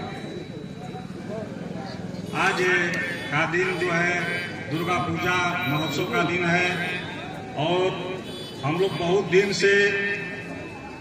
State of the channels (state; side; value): identical; both; correlation 1.00